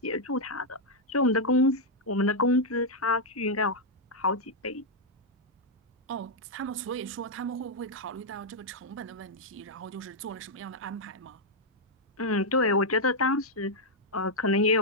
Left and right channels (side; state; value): both; normal; correlation -0.03